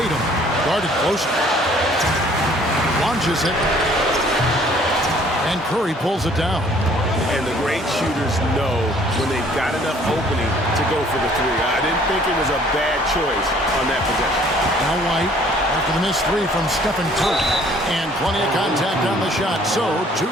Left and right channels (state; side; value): normal; both; correlation 0.57